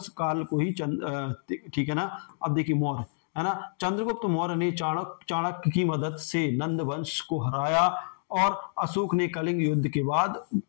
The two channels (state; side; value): silent; right; digital silence